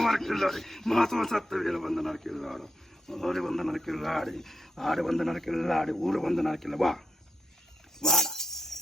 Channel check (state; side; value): normal; both; correlation 0.83